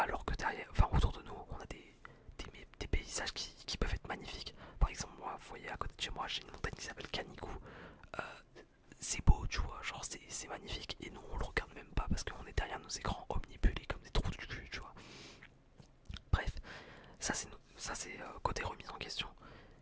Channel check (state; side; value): identical; both; correlation 1.00